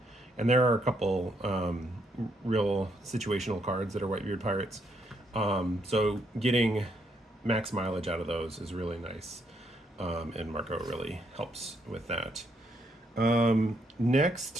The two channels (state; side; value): normal; both; correlation 0.74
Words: there are a couple real situational cards that are Whitebeard Pirates. So getting max mileage out of those is really nice, and Marco really helps with that.